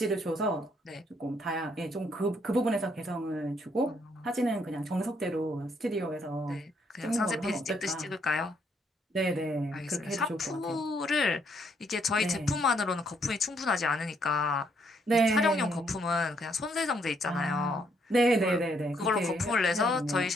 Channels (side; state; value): both; normal; correlation 0.71